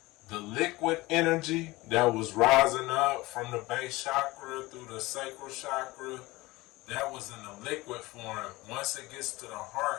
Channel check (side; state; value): right; quieter; 20.7 dB